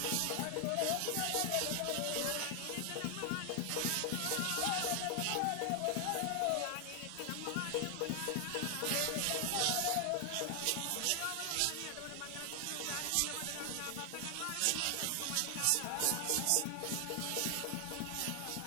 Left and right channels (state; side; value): different; both; correlation 0.00